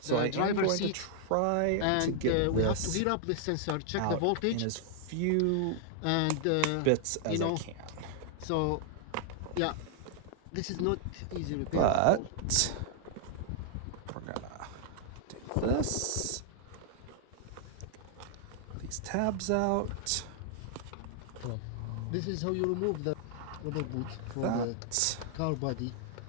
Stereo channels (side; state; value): both; different; correlation -0.01